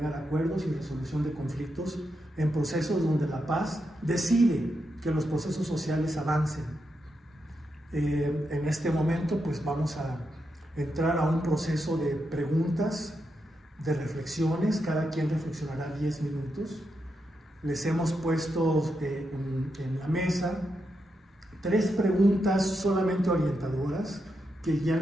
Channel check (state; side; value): normal; both; correlation 0.85